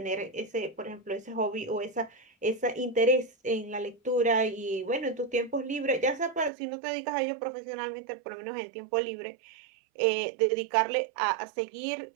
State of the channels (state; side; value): drops out; left; at 6.5 s